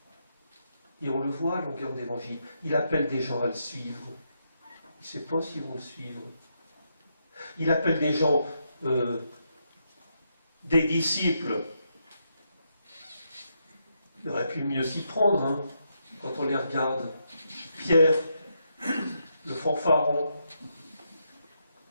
et on le voit à longueur d'évangile. Il appelle des gens à le suivre. Il ne sait pas s'ils vont le suivre. Il appelle des gens, des disciples. Il aurait pu mieux s'y prendre, hein, quand on les regarde. Pierre, le fanfaron.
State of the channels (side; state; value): both; inverted; correlation -0.80